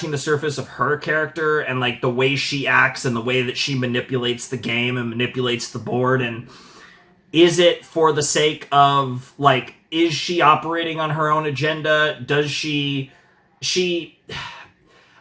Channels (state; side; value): identical; both; correlation 1.00